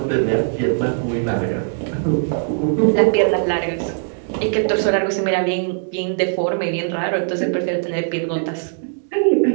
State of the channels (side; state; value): left; silent; 64 dB below the other